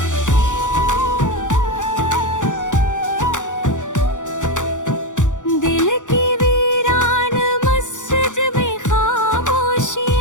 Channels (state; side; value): late; right; 0.86 ms